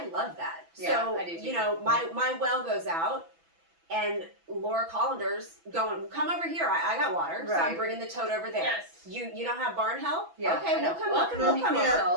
love that. Yeah, So, I do too. my well goes out, and Laura Collander's going, come over here. I got water, so I'm Right. bringing the tote over there. Yes. You don't have barn help? Yeah, Okay, I know. we'll come Welcome we'll to come People over.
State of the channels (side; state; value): left; late; 6.0 ms